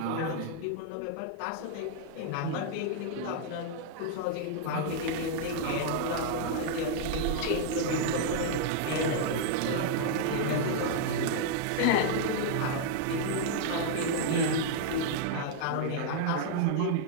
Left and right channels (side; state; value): both; different; correlation -0.01